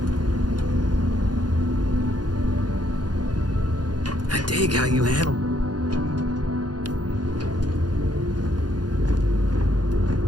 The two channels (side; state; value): left; late; 0.70 ms